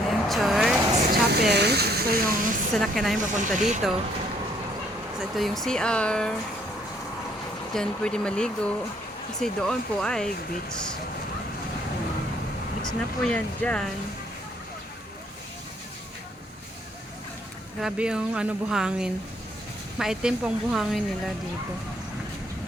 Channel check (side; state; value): both; normal; correlation 0.66